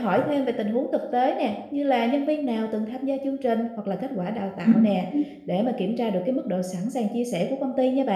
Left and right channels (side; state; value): both; identical; correlation 1.00